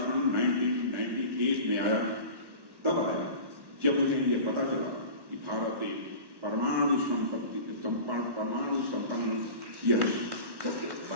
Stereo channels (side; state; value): left; late; 1.1 ms